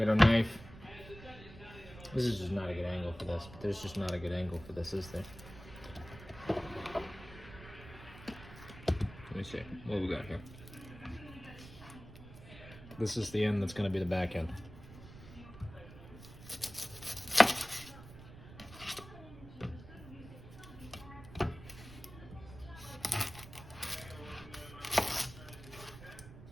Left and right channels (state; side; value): noise; right; rumble, 16 dB below the sound